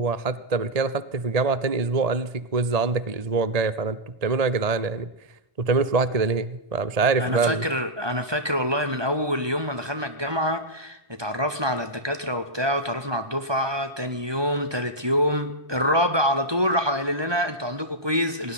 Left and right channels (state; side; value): late; left; 1.2 ms